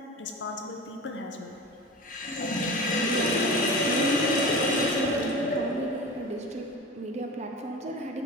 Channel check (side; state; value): both; normal; correlation 0.32